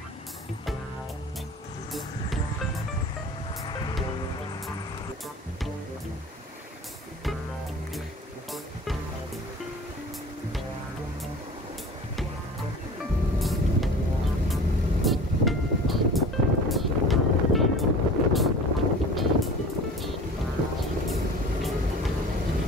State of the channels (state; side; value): normal; both; correlation 0.40